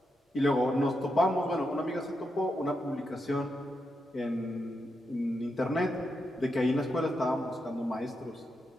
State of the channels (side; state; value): both; normal; correlation 0.85